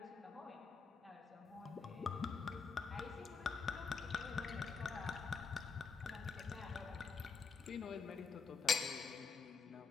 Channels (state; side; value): quieter; right; 5.0 dB